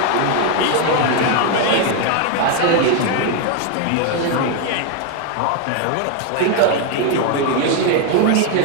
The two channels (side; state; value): both; different; correlation 0.01